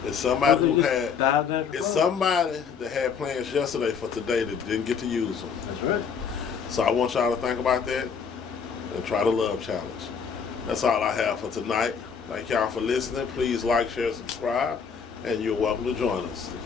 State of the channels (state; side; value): quieter; right; 6.4 dB